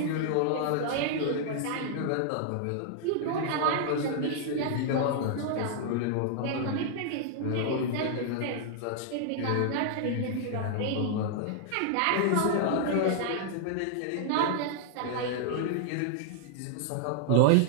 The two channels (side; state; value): both; different; correlation -0.01